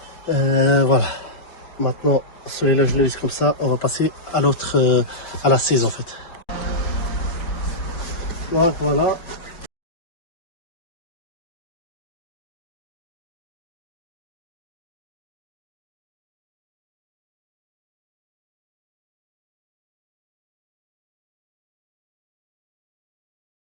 Voilà. Maintenant celui-là je le laisse comme ça. On va passer à l'autre, à la 16 en fait. Donc voilà.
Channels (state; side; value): late; right; 4.7 ms